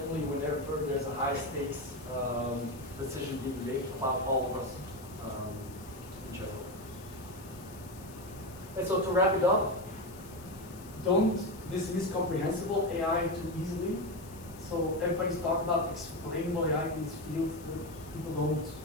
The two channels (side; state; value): left; noise; hiss, 20 dB below the sound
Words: whenever there's a high stakes decision being made about all of us in general. And so to wrap it up, don't dismiss comprehensible AI too easily. So everybody's talking about explainable AI in this field. People don't